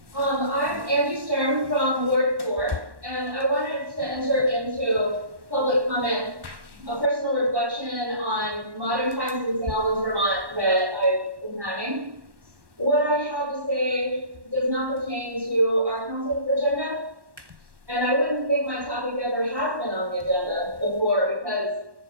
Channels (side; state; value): left; late; 1.1 ms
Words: I'm Angie Stern from Ward 4, and I wanted to enter into public comment, a personal reflection on modern times in St. Albans, Vermont that I've been having. What I have to say does not pertain to our council's agenda, and I wouldn't think my topic ever has been on the agenda before because